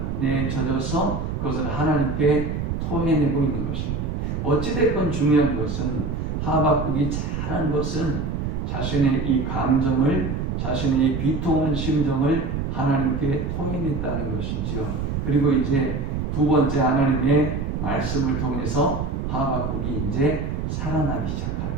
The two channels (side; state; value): right; noise; rumble, 2 dB below the sound